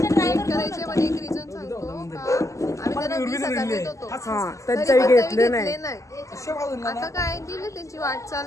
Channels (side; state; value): right; late; 0.16 ms